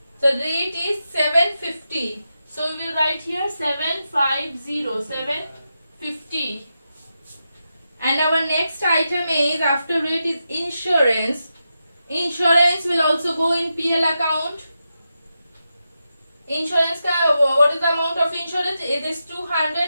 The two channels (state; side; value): inverted; both; correlation -0.88